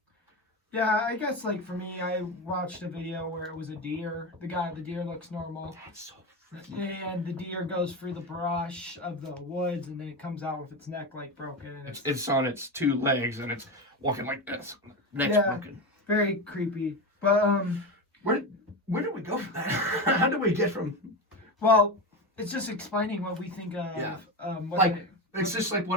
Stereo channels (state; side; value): normal; both; correlation 0.19